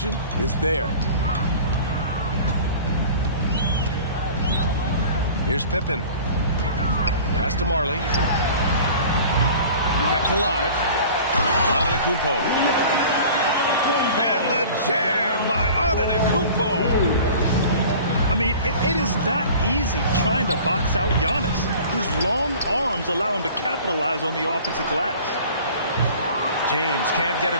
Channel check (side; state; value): both; inverted; correlation -0.43